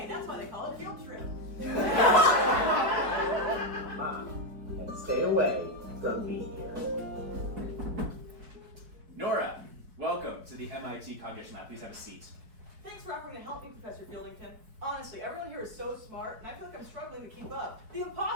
that's why they call it field trip. And stay away from Be-Eer. Nora, welcome to the MIT Cognition Lab. Please have a seat. Thanks for offering to help me, Professor Fieldington. Honestly, everyone here is so smart, and I feel like I'm struggling to keep up. The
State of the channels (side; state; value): left; late; 4.7 ms